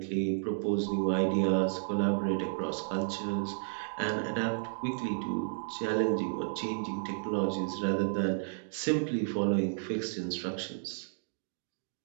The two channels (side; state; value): left; silent; digital silence